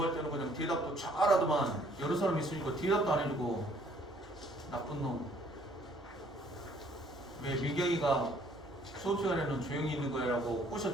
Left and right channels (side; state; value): both; normal; correlation 0.61